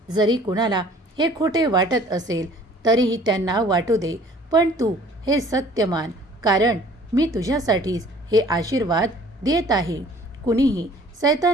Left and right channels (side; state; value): both; normal; correlation 0.53